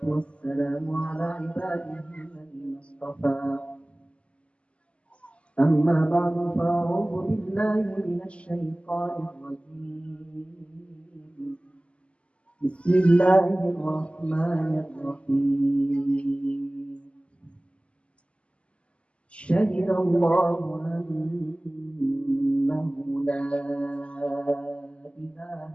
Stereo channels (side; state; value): right; late; 0.057 ms